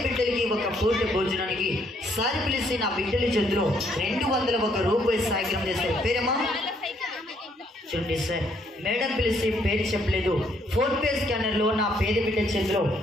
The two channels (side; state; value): both; normal; correlation 0.69